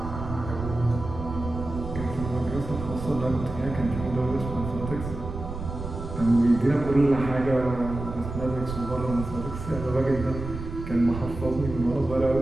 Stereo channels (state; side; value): noise; right; rumble, 8 dB below the sound